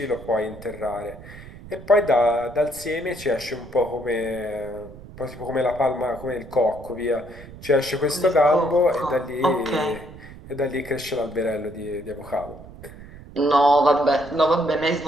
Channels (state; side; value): noise; right; rumble, 17 dB below the sound